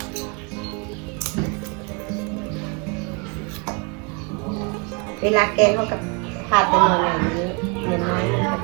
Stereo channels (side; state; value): left; quieter; 32.3 dB